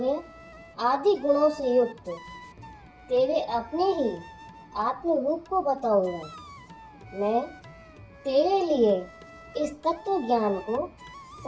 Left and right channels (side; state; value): both; identical; correlation 1.00